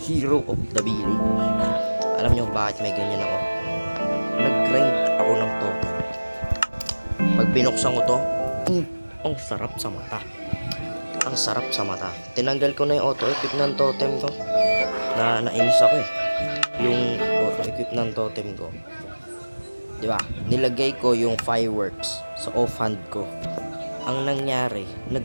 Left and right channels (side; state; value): both; inverted; correlation -1.00